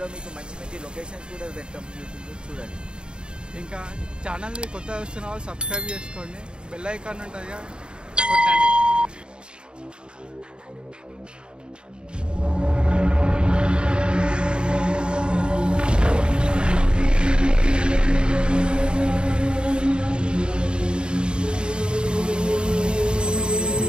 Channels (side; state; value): left; late; 0.051 ms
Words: మీకు మంచి మంచి లొకేషన్స్ కూడా పెట్టాం, యూట్యూబ్లో చూడండి. ఇంకా ఛానల్ని కొత్తగా వస్తున్న వాళ్ళు సబ్స్క్రైబ్ చేసుకోండి, బెల్ ఐకాన్ ఉంటుంది కొట్టండి.